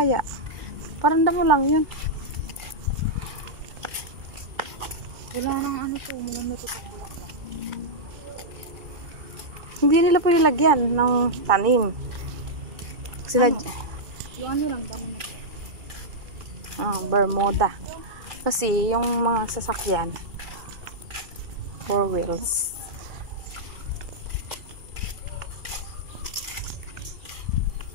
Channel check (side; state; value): left; late; 2.3 ms